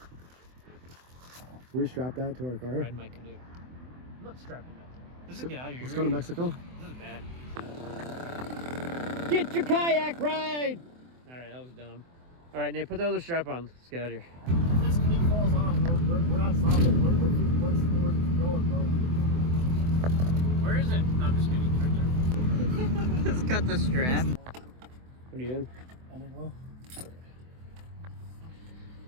Can we strap that to our car? Ride my canoe. I'm not strapping that. Let's get out of here. Let's go to Mexico. This is bad. Get your kayak ride! Alright, that was dumb. Alright, Nate, put the other strap on. Let's get out of here. If this canoe falls off, we're not stopping. We're going, bro. Where is it? No, I'm just kidding. It's right there. Let's cut the strap. What are you doing? I don't know.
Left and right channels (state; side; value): late; left; 24 ms